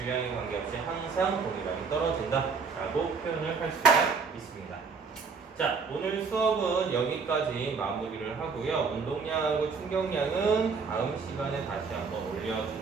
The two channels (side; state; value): left; quieter; 5.1 dB